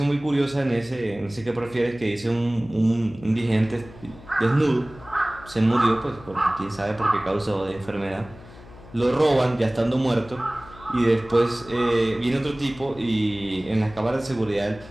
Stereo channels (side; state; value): left; noise; hum, 20 dB below the sound